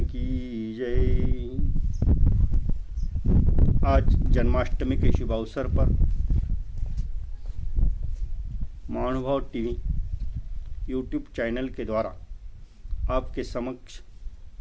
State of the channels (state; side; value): identical; both; correlation 1.00